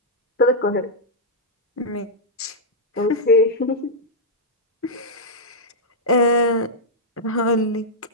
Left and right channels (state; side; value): normal; both; correlation -0.07